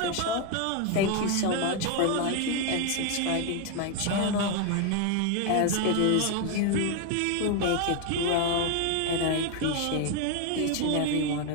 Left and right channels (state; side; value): different; both; correlation 0.01